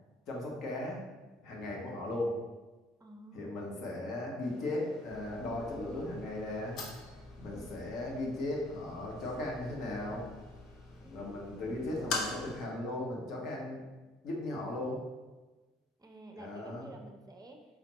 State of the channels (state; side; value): normal; both; correlation 0.60